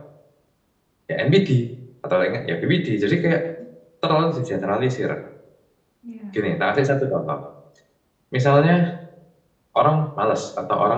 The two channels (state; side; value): identical; both; correlation 1.00